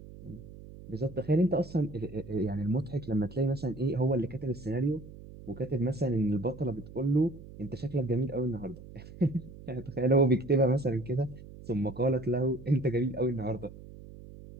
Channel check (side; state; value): right; noise; hum, 16 dB below the sound